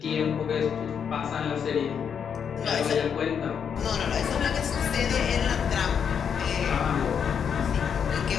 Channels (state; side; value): quieter; right; 7.4 dB